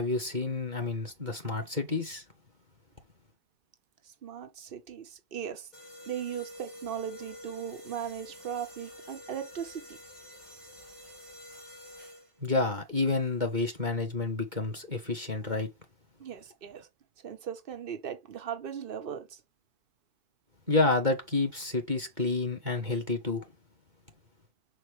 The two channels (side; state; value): left; late; 2.2 ms